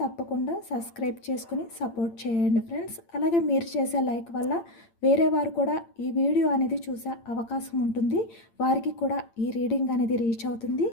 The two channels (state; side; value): late; right; 8.8 ms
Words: సబ్స్క్రైబ్ చేసుకుని సపోర్ట్ చేయండి ఫ్రెండ్స్. అలాగే మీరు చేసే లైక్ వల్ల వేరే వారు కూడా ఈ వీడియో అనేది చూసే అవకాశం ఉంటుంది. వారికి కూడా ఈ రీడింగ్ అనేది రీచ్ అవుతుంది.